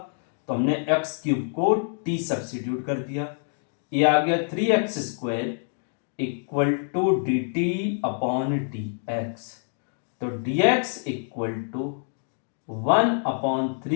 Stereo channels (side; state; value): right; silent; digital silence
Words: तो हमने एक्स क्यूब को टी सब्स्टिट्यूट कर दिया, ये आ गया 3x² equal to dt upon dx। तो dx equal to